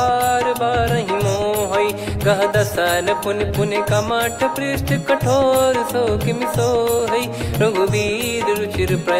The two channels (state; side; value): identical; both; correlation 1.00